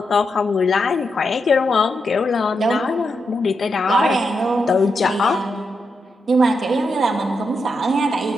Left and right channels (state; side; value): normal; both; correlation 0.85